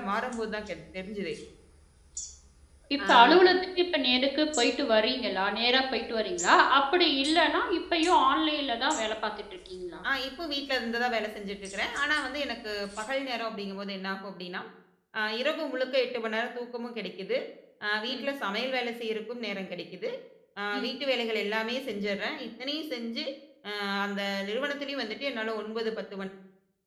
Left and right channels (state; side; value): identical; both; correlation 1.00